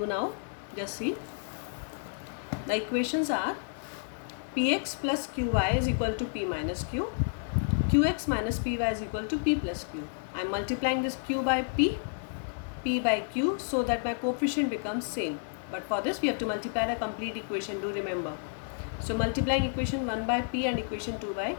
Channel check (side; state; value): right; silent; digital silence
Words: now. Just see. The equations are Px plus Qy is equal to P minus Q. Qx minus Py is equal to P plus Q. I am multiplying this Q by P, P by Q so that my coefficient becomes same. But for this we have to multiply the complete equation, do remember. So multiplying equation 1 by P and equation 2 by